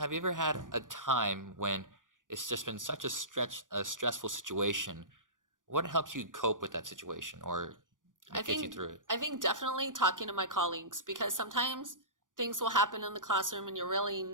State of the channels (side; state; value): left; late; 0.88 ms